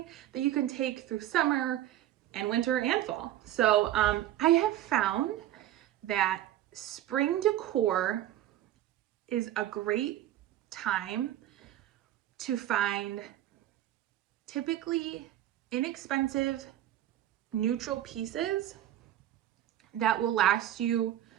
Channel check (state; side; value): quieter; left; 12.9 dB